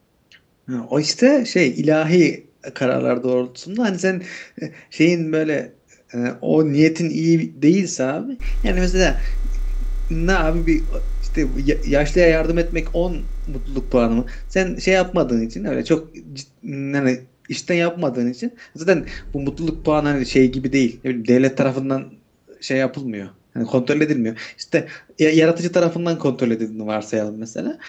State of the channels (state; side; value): identical; both; correlation 1.00